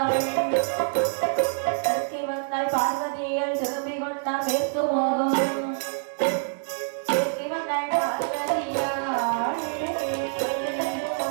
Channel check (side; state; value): left; silent; digital silence